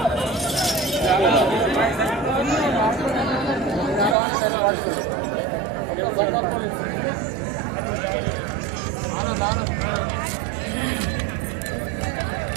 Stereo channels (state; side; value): drops out; left; at 4.2 s